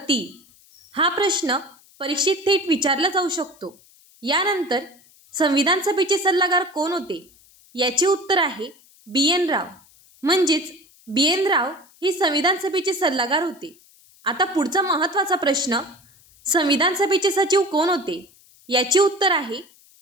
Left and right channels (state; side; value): noise; left; hiss, 28 dB below the sound